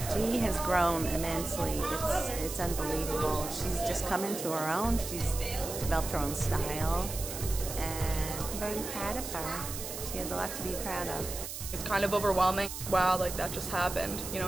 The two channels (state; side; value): noise; right; hiss, 7 dB below the sound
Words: She has grown immensely. It's unbelievable. She's just come into her own. She's developed her own style, and I'm very proud of her. She has a lot to be proud of. It's kind of overwhelming. Wow, like that just happened.